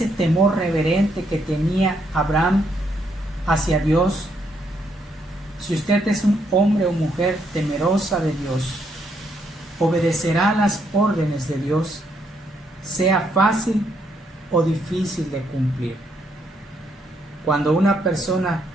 temor reverente que tenía Abraham hacia Dios? Si usted es un hombre o mujer temerosa de Dios, obedecerá las órdenes de Dios, sea fácil o difícil de cumplir. Cuando una persona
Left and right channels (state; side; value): normal; both; correlation 0.74